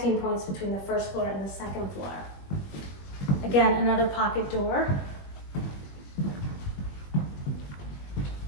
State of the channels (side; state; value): right; late; 21 ms